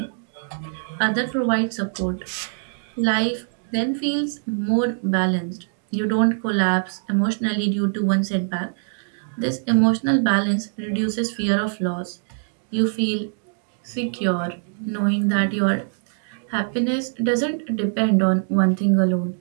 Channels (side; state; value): left; silent; digital silence